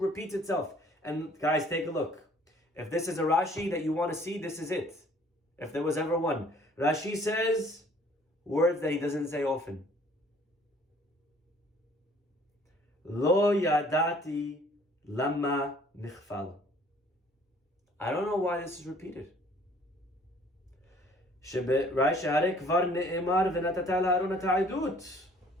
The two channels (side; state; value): both; normal; correlation 0.56